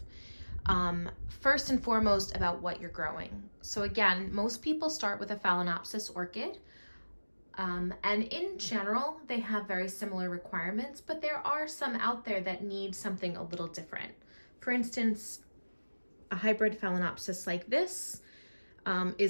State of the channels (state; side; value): inverted; both; correlation -1.00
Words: First and foremost about what you're growing. So again, most people start with a Phalaenopsis orchid. And in general, they have very similar requirements, but there are some out there that need something a little different. For instance, a hybrid Phalaenopsis like this